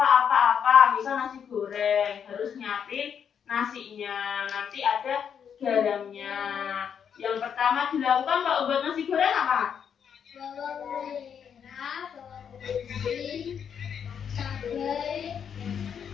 misal nasi goreng, harus nyiapin nasinya, nanti ada garamnya, Yang pertama dilakukan kalau buat nasi goreng apa? Bawang merah, bawang putih, cabai,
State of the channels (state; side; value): quieter; right; 7.7 dB